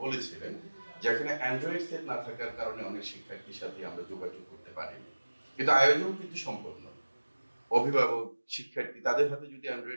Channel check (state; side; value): inverted; both; correlation -1.00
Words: বলেছিলেন, যেখানে অ্যান্ড্রয়েড সেট না থাকার কারণে অনেক শিক্ষার্থীর সাথে আমরা যোগাযোগ করতে পারিনি, কিন্তু আয়োজন কিন্তু সম্পূর্ণ। অভিভাবক, শিক্ষার্থী, তাদের হাতে যদি